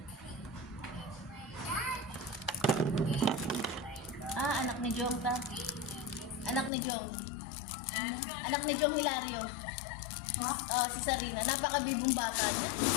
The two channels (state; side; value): drops out; right; at 6.7 s